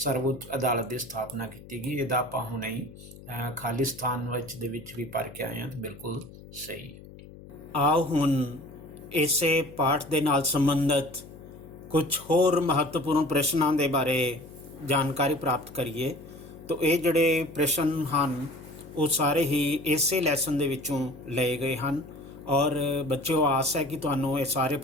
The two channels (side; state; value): left; noise; hum, 18 dB below the sound